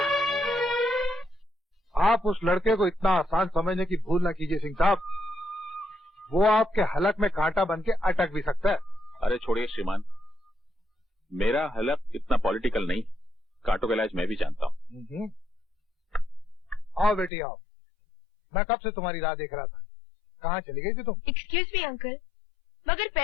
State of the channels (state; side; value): drops out; right; at 17.3 s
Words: आप उस लड़के को इतना आसान समझने की भूल न कीजिए सिंह साहब, वो आपके हलक में कांटा बन के अटक भी सकता है। अरे छोड़िए श्रीमान, मेरा हलक इतना पॉलिटिकल नहीं, कांटों का इलाज मैं भी जानता हूँ। आओ बेटी आओ, मैं कब से तुम्हारी राह देख रहा था, कहाँ चली गई थी तुम? एक्सक्यूज मी अंकल, मगर